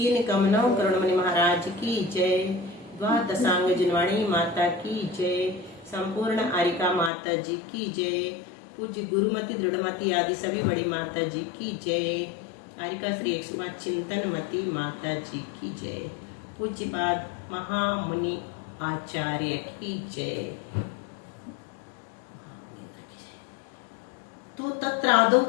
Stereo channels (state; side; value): drops out; right; at 7.1 s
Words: कमनव करुणमणि महाराज की जय। द्वादशांग जिनवाणी माता की जय। संपूर्ण आरिका माता जी की जय। पूज्य गुरुमति दृढ़मति आदि सभी बड़ी माता जी की जय। आरिका श्री 105 चिंतनमती माता जी की जय। पूज्यपाद महामुनि आचार्य की जय। तो तत्रादौ